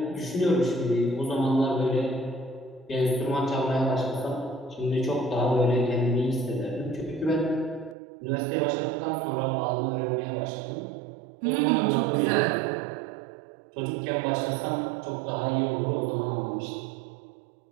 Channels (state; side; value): drops out; left; at 8.0 s